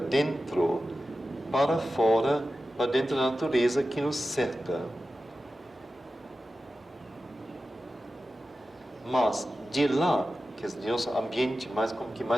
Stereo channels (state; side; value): normal; both; correlation 0.93